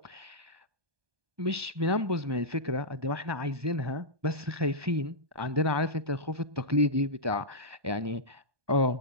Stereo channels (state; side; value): late; left; 1.2 ms